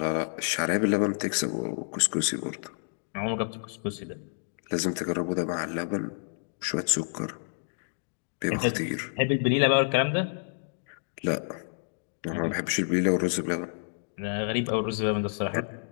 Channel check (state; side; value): silent; right; digital silence